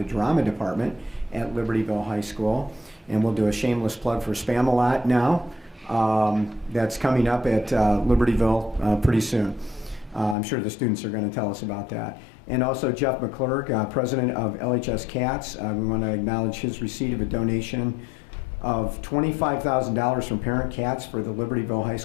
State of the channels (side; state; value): right; drops out; at 10.4 s